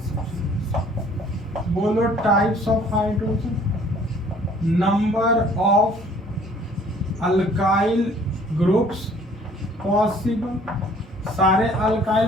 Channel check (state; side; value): normal; both; correlation 0.56